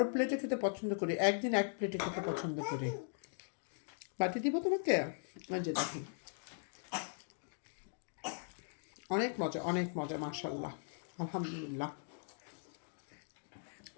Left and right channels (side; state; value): right; silent; digital silence